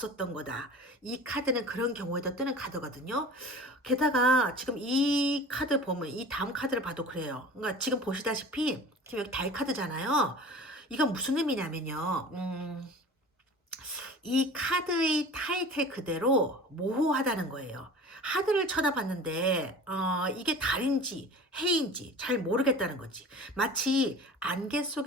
거다. 이 카드는 그런 경우에도 뜨는 카드거든요. 게다가 지금 이 카드 보면 이 다음 카드를 봐도 그래요. 그러니까 지금 보시다시피 지금 여기 달 카드잖아요. 이건 무슨 의미냐면요. 이 카드의 타이틀 그대로 모호하다는 거예요. 하늘을 쳐다봤는데 이게 달인지 해인지 잘 모르겠다는 거지. 마치 안개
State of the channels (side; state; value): both; normal; correlation 0.39